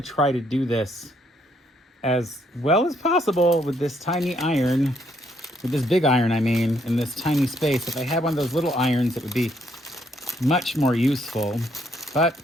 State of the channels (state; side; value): normal; both; correlation 0.71